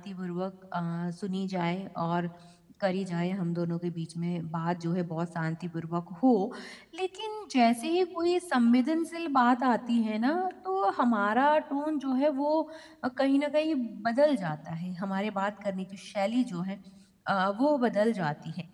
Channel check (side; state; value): both; identical; correlation 1.00